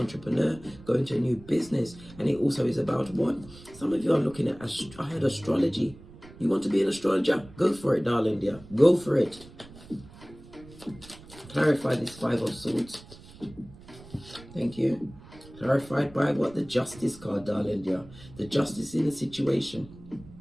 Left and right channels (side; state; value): right; noise; rumble, 20 dB below the sound